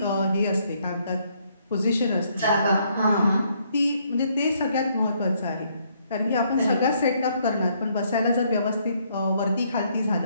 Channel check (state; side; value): inverted; both; correlation -0.70